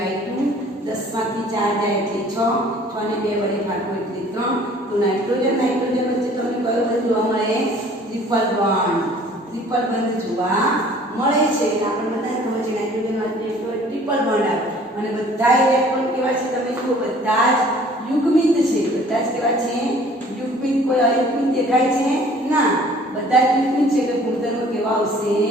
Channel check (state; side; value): normal; both; correlation 0.53